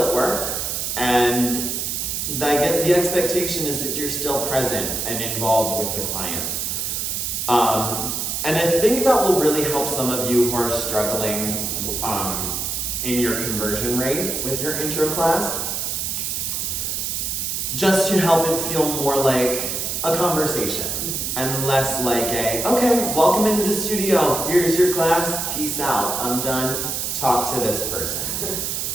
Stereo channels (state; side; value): noise; right; hiss, 2 dB below the sound